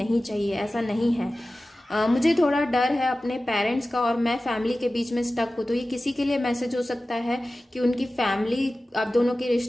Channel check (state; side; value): normal; both; correlation 0.96